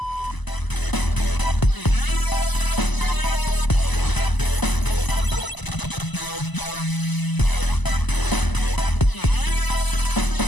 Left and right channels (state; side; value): late; right; 1.0 ms